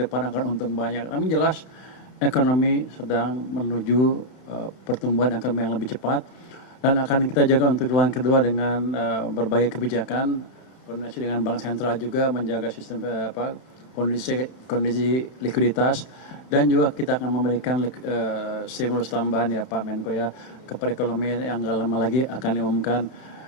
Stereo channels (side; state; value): right; late; 31 ms